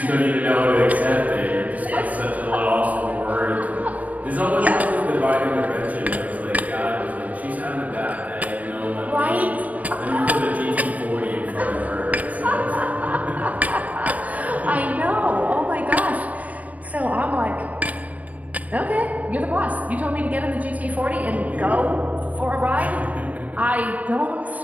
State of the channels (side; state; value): left; late; 0.071 ms